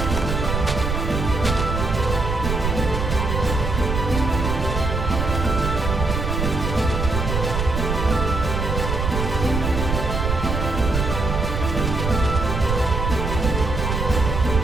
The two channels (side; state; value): right; noise; rumble, 2 dB below the sound